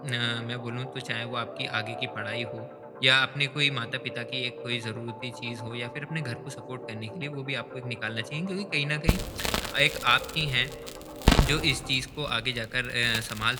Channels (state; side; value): identical; both; correlation 1.00